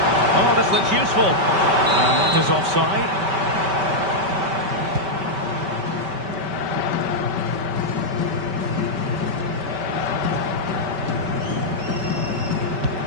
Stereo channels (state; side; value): late; left; 5.2 ms